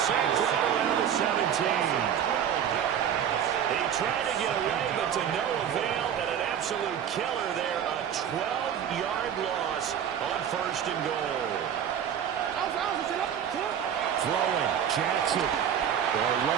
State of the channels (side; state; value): left; quieter; 9.0 dB